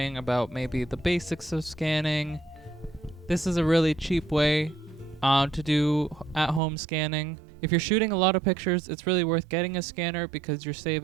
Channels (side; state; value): left; drops out; at 6.6 s